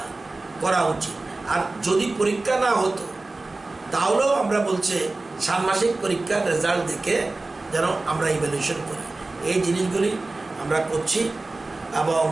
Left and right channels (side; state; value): left; quieter; 3.2 dB